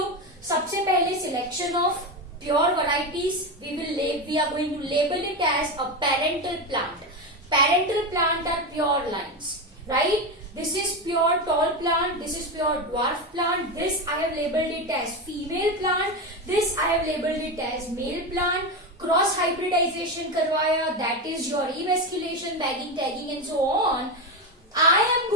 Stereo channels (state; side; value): normal; both; correlation 0.16